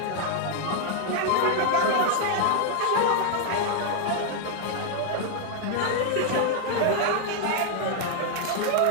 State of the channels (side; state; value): both; different; correlation 0.00